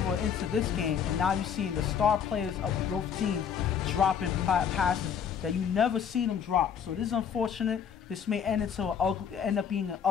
into this game, and now you're seeing the star players of both teams dropping passes that you never see them drop. So this is unfortunate. This may end up being an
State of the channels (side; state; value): right; quieter; 7.7 dB